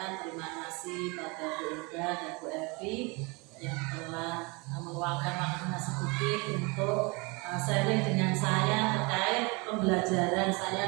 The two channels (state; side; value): quieter; left; 28.2 dB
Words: terima kasih pada Bu Ida dan Bu Evi yang telah meluangkan waktunya sedikit untuk sharing dengan saya terkait pembelajaran saya